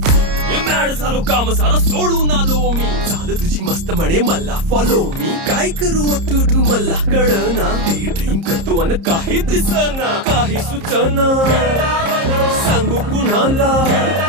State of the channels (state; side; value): late; left; 30 ms